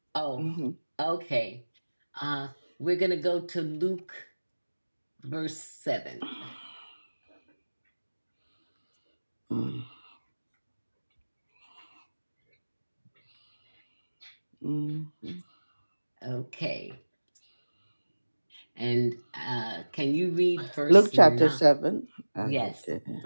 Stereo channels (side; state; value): both; inverted; correlation -1.00